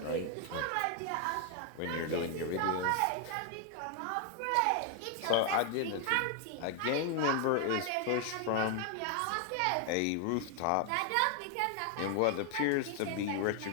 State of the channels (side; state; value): both; different; correlation 0.00